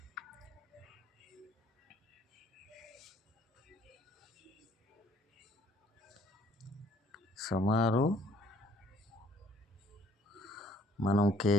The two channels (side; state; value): both; normal; correlation 0.61